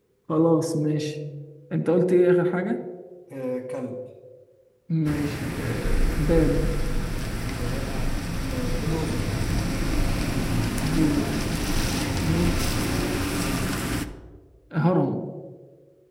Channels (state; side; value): identical; both; correlation 1.00